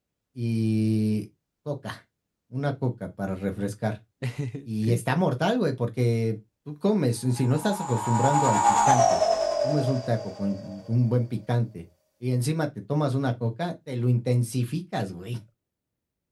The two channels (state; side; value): identical; both; correlation 1.00